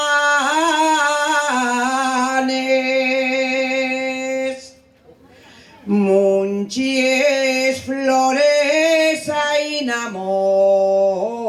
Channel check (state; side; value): identical; both; correlation 1.00